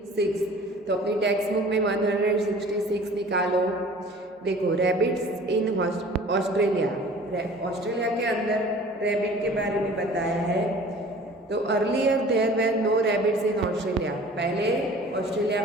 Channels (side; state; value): both; normal; correlation 0.46